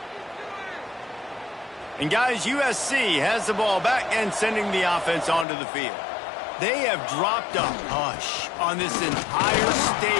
And guys, USC has the ball back and sending the offense onto the field. They have dropped a hush on this entire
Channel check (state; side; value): drops out; right; at 5.5 s